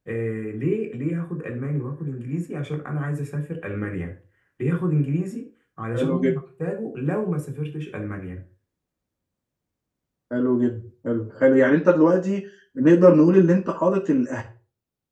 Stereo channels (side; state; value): both; identical; correlation 1.00